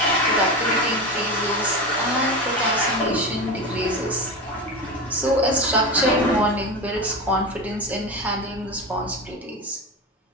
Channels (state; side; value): normal; both; correlation 0.22